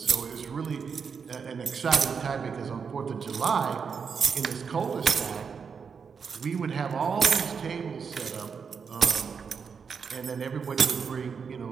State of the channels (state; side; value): quieter; left; 6.1 dB